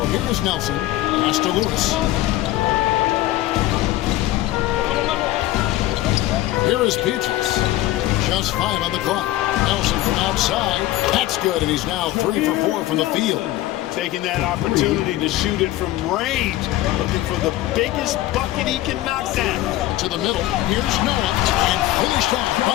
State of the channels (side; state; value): right; quieter; 15.5 dB